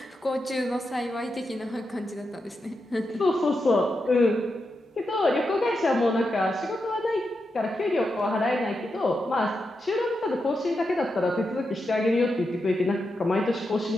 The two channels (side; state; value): both; normal; correlation 0.87